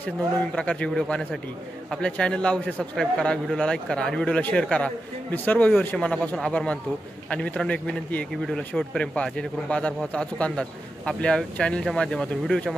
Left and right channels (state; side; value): normal; both; correlation 0.89